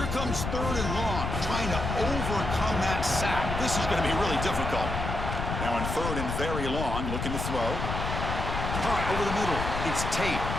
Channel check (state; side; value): noise; left; rumble, 3 dB below the sound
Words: comes 3rd and long, trying to overcome that sack. This is going to be really difficult. Now in 3rd and very long, looking to throw. Caught over the middle. It's Tate.